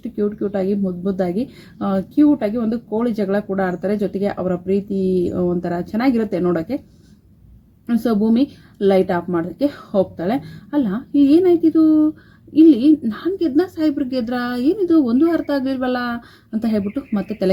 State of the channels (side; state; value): both; identical; correlation 1.00